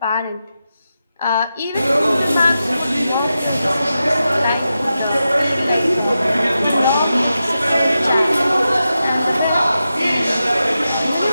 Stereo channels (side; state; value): both; inverted; correlation -0.90